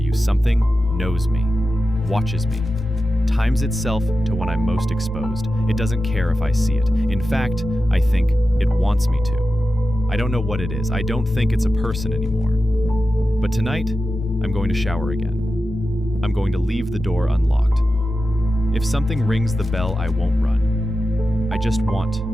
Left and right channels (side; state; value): both; normal; correlation 0.92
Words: you, something knows me, watches me, times itself to when I'm most exposed. It doesn't care if I see it. In fact, I think it wants me to. I don't know what it is. I don't think it's a person anymore. But tonight, I'm going to shower again. I'm going to leave the door unlocked. If something rings the bell, I won't run. I just want